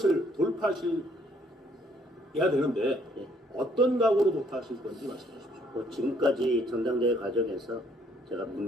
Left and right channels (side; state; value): both; normal; correlation 0.65